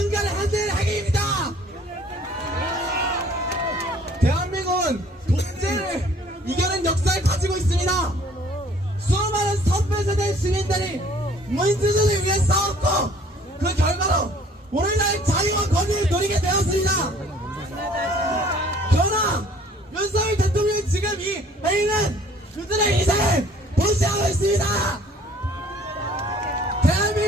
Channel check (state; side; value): normal; both; correlation 0.56